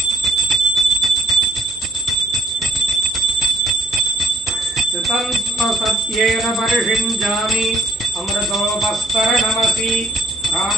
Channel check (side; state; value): both; normal; correlation 0.61